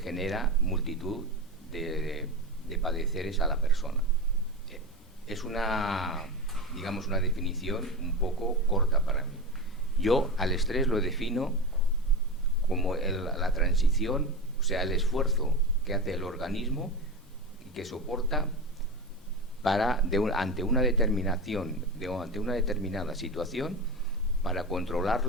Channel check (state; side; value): normal; both; correlation 0.22